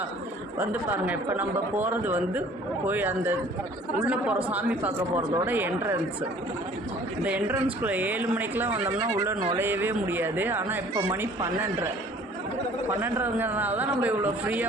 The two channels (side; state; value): both; normal; correlation 0.52